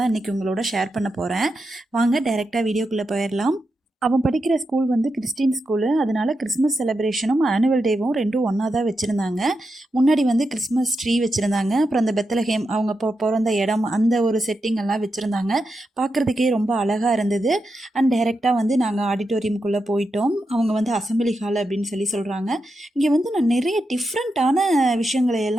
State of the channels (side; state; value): both; normal; correlation 0.87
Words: இன்றைக்கி உங்களோட ஷேர் பண்ண போகிறேன். வாங்க டைரெக்டாக வீடியோக்குள்ளே போயிடலாம். அவன் படிக்கிற ஸ்கூல் வந்து கிறிஸ்டின் ஸ்கூலு. அதனால் கிறிஸ்மஸ் செலிப்ரேஷனும் ஆனுவல் டேவும் ரெண்டும் ஒன்றா தான் வச்சுருந்தாங்க. முன்னாடி வந்து கிறிஸ்மஸ் ட்ரீ வச்சுருந்தாங்க. அப்புறம் அந்த பெத்தலஹேம் அவங்க பிறந்த இடம் அந்த ஒரு செட்டிங் எல்லாம் வச்சுருந்தாங்க. பார்க்குறதுக்கே ரொம்ப அழகாக இருந்தது. அண்ட் டைரெக்டாக வந்து நாங்கள் ஆடிட்டோரியம்குள்ளே போயிட்டோம். அவங்க வந்து அசம்பிளி ஹால் அப்படின்னு சொல்கிறாங்க. இங்கே வந்து நான் நிறைய டிஃப்ரெண்ட்டான விஷயங்களை